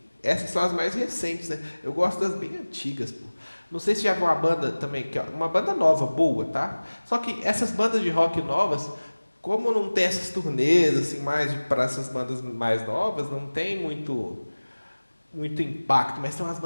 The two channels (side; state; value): both; inverted; correlation -1.00